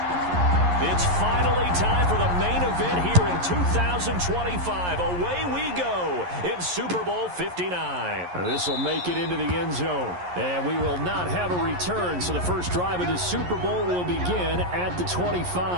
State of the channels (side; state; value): left; late; 11 ms